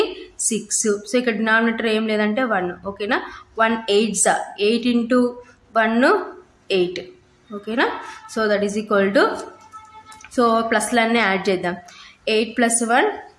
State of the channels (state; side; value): identical; both; correlation 1.00